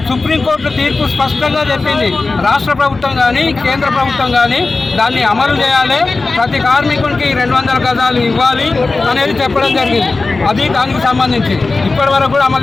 సుప్రీంకోర్టు తీర్పు స్పష్టంగా చెప్పింది, రాష్ట్ర ప్రభుత్వం కానీ కేంద్ర ప్రభుత్వం కానీ దాన్ని అమలు చేయాలి, ప్రతి కార్మికునికి 200 గజాలు ఇవ్వాలి అనేది చెప్పడం జరిగింది. అది దానికి సంబంధించి ఇప్పటి వరకు కూడా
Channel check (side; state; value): right; quieter; 3.7 dB